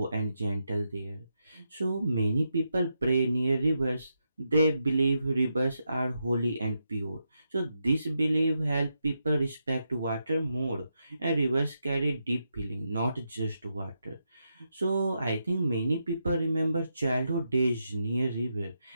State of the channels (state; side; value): inverted; both; correlation -0.84